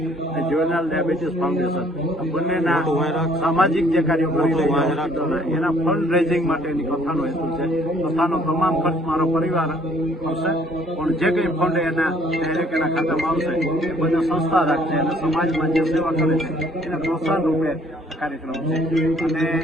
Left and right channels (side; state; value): both; normal; correlation 0.60